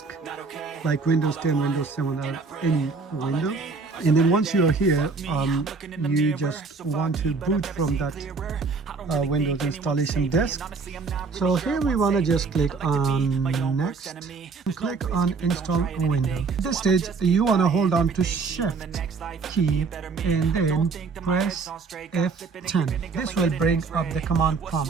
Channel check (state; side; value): quieter; left; 4.6 dB